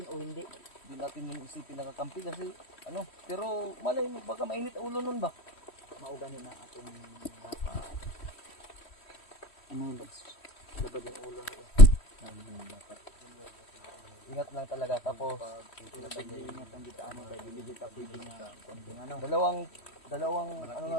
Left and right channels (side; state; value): right; late; 3.1 ms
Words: o hindi. Hindi natin yung isipin nakakampi kasi ano. Pero malay mo baka mainit ang ulo nun ba? Maugani na atong dapat ano ba labad yung ulo ko. Ingat lang talaga tapos Ingat ang dito ano dahil hindi kita pwede na konting ano. dalawang ano